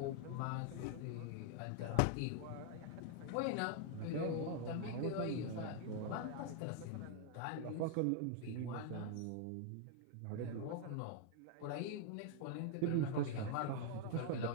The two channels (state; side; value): different; both; correlation 0.00